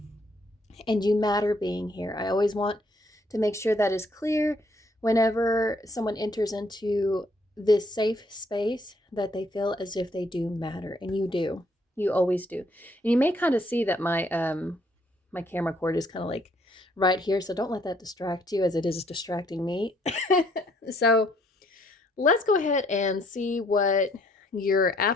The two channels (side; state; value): both; normal; correlation 0.66